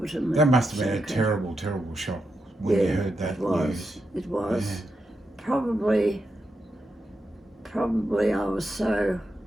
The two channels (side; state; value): both; normal; correlation 0.85